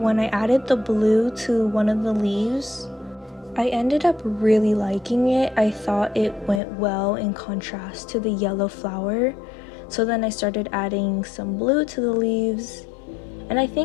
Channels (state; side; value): drops out; right; at 6.6 s